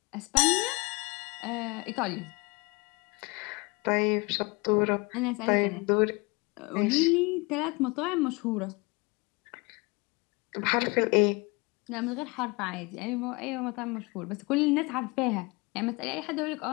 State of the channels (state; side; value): quieter; right; 26.7 dB